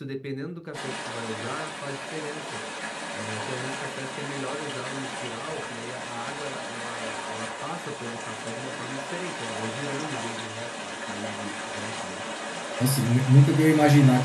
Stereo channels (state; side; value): identical; both; correlation 1.00